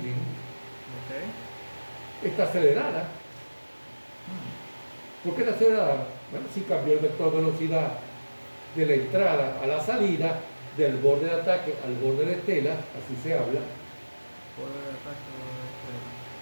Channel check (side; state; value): both; inverted; correlation -1.00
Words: está acelerada. ¿Por qué está acelerada? Bueno, si cambió el vector de velocidad de la entrada a la salida, del borde de ataque al borde de estela, así se habla,